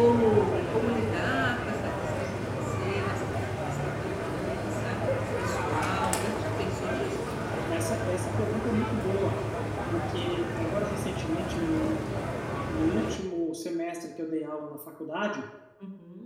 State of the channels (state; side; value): identical; both; correlation 1.00